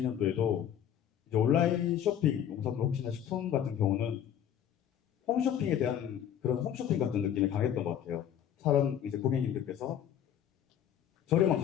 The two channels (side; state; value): right; quieter; 9.8 dB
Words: 이제 온라인 쇼핑, 농산물 혹시나 식품 같은 경우는 홈쇼핑에 대한 그런 홈쇼핑 같은 느낌이 강했던 것 같아요. 사람 이제 고객님들께서 저렴한